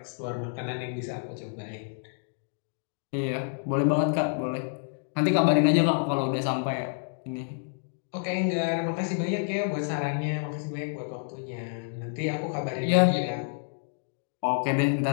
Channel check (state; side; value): silent; right; digital silence